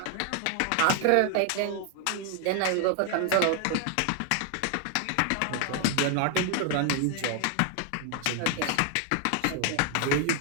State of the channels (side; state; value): both; different; correlation 0.00